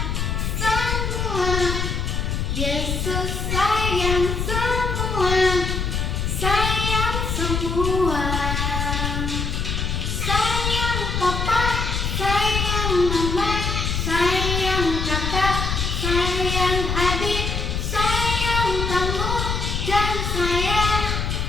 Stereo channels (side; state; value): left; noise; rumble, 1 dB below the sound